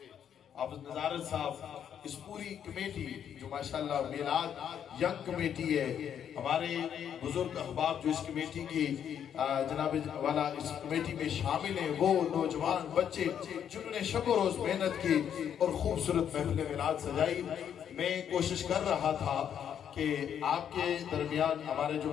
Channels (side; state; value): right; quieter; 8.9 dB